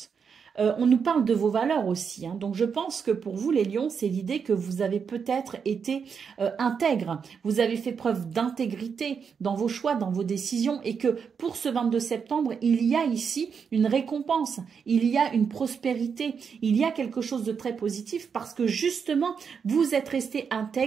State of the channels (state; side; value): quieter; left; 6.4 dB